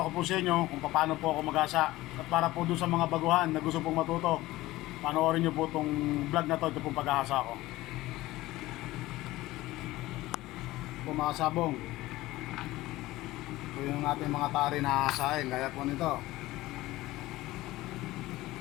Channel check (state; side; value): quieter; right; 17.8 dB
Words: ko po sa inyo kung paano po ako mag-asa. At para po dun sa mga baguhan na gusto pong matuto, panoorin nyo po itong vlog na to, ito pong pag-asa ko. Po mga sabong, ito yung ating mga tari na asahin, gaya po nito.